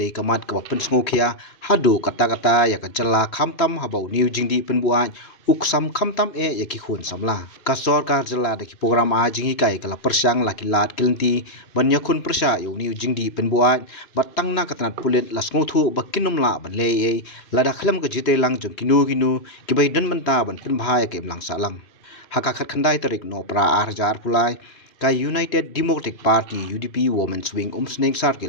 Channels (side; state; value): right; late; 3.0 ms